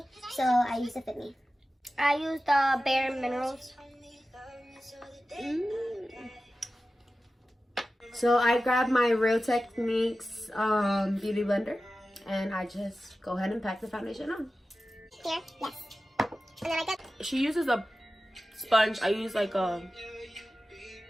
so I use the Fit Me. I use the Bare Minerals. So I grab my Real Techniques beauty blender and I just go ahead and pack the foundation on. Here, yes. And then I got. She uses a sponge. I use like a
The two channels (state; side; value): normal; both; correlation 0.94